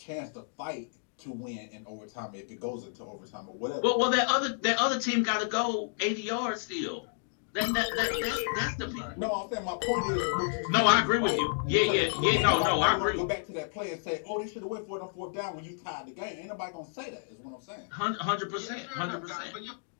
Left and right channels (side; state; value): right; silent; digital silence